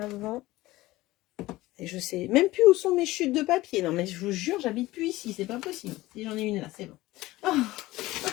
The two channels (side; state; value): right; quieter; 18.2 dB